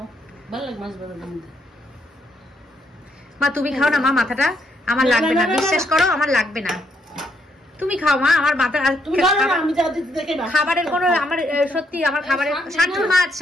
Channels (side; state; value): both; normal; correlation 0.74